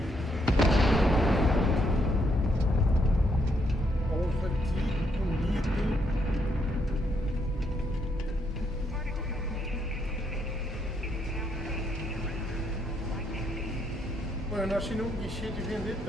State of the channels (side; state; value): both; normal; correlation 0.75